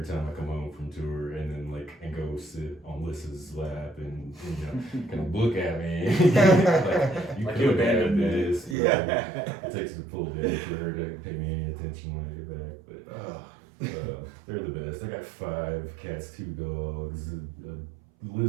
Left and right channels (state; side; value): drops out; left; at 8.8 s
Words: time I come home from tour, and then and go sit on Lissa's lap and kind of look at me. Like you abandoned me. this. Yeah. It takes a full day for her to pay me any attention when I get back. But they're the best. I got 5 cats, 2 dogs,